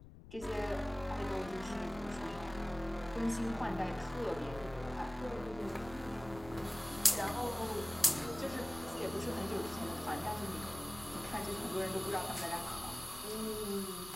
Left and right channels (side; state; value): left; noise; rumble, 16 dB below the sound